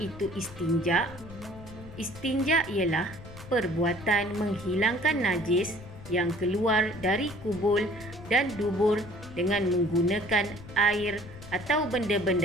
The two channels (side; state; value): left; noise; rumble, 16 dB below the sound